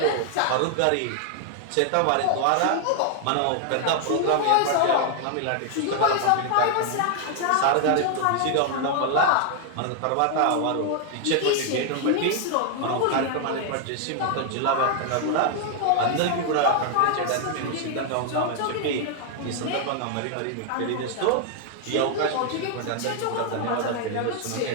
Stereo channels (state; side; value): different; both; correlation 0.00